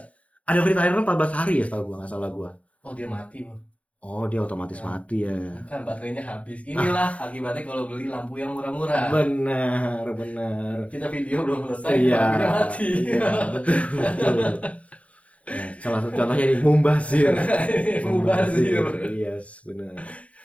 Ada free trial 14 hari ya, setahu gua, nggak salah gua. Oh, dia mati, Bang. Oh, dia otomatis Nah, mati ya. kan baterainya habis. Inilah akibatnya kalau beli lampu yang murah-murah. Benar, benar. Kita video belum selesai, Iya, lampunya mati. iya, betul, betul. Nah, salah satu contohnya ini mubazir. Mubazir. Yes, benar.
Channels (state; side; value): late; right; 0.065 ms